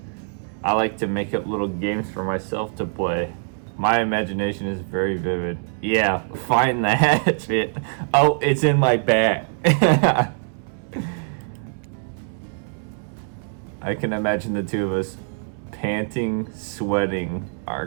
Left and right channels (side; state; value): left; silent; digital silence